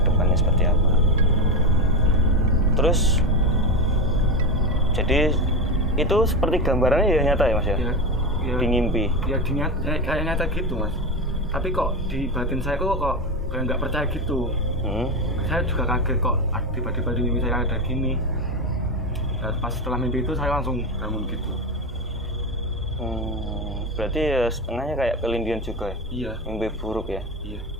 depannya seperti apa. Terus jadi itu seperti gambarannya ya nyata ya mas ya? Ya Di ngimpi. ya kayak nyata gitu mas. Tapi kok di batin saya kok kayak nggak percaya gitu. Saya juga kaget kok tiba-tiba di mimpi saya ada gini. Nah, pas setelah mimpi itu saya langsung bangun gitu. Berarti ya setengahnya kayak kelindian juga ya? Iya. Mimpi buruk ya? Iya.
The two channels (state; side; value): normal; both; correlation 0.16